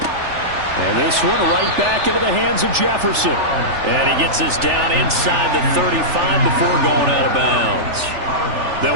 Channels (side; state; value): left; late; 3.4 ms